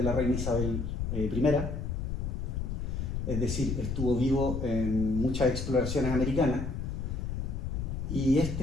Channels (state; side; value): noise; left; rumble, 2 dB below the sound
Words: la reina Isabel I, es decir, estuvo vivo en muchas exploraciones americanas. Y este